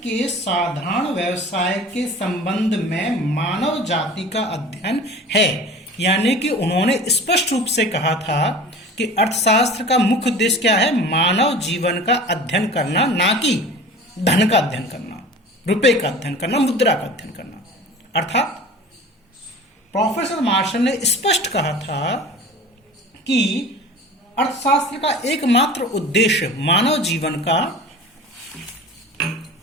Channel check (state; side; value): normal; both; correlation 0.39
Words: के साधारण व्यवसाय के संबंध में मानव जाति का अध्ययन है। यानी कि उन्होंने स्पष्ट रूप से कहा था कि अर्थशास्त्र का मुख्य उद्देश्य क्या है? मानव जीवन का अध्ययन करना, ना कि धन का अध्ययन करना, रुपए का अध्ययन करना, मुद्रा का अध्ययन करना। अर्थात प्रोफेसर मार्शल ने स्पष्ट कहा था कि अर्थशास्त्र का एकमात्र उद्देश्य मानव जीवन